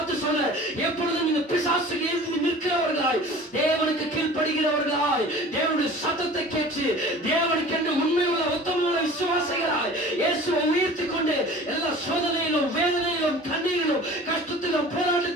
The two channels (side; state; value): both; normal; correlation 0.42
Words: உள்ளவர்களாய் தேவனுடைய சத்தத்தை கேட்டு தேவனுக்கென்று உண்மையுள்ள உத்தமமுள்ள விசுவாசிகளாய் இயேசுவை உயர்த்தி கொண்டு எல்லா சோதனையிலும் வேதனையிலும் கண்ணீரிலும் கஷ்டத்திலும்